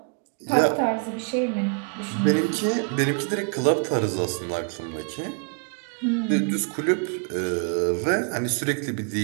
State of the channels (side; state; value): left; quieter; 39.8 dB